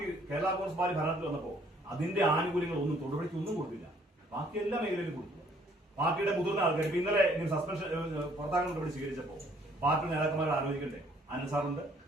കേരള കോൺഗ്രസ് പാർട്ടി ഭരണത്തിൽ വന്നപ്പോ അതിന്റെ ആനുകൂല്യങ്ങൾ ഒന്നും തൊടുപുഴയ്ക്ക് ഒന്നും കൊടുത്തില്ല. ബാക്കി എല്ലാ മേഖലയിലും കൊടുത്തു. പാർട്ടിയുടെ മുതിർന്ന ആൾക്കാർ ഇപ്പൊ ഇന്നലെ സസ്പെൻഷൻ പുറത്താക്കാൻ നടപടി സ്വീകരിച്ചപ്പോ പാർട്ടി നേതാക്കന്മാർ ആലോചിക്കണ്ടേ? അനസാറുണ്ട്,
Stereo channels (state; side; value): normal; both; correlation 0.62